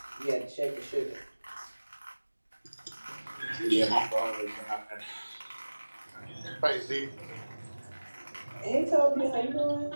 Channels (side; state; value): both; inverted; correlation -1.00